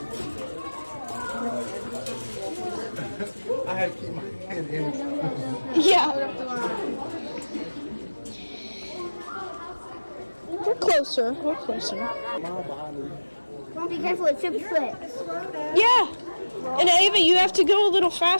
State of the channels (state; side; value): inverted; both; correlation -1.00